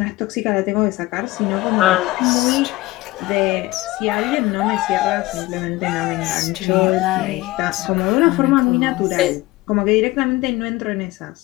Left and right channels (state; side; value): quieter; right; 19.3 dB